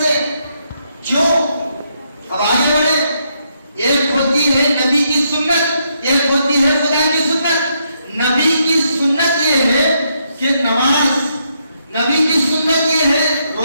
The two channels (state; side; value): inverted; both; correlation -0.77